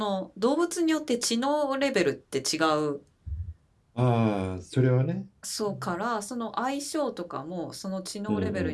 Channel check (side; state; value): both; identical; correlation 1.00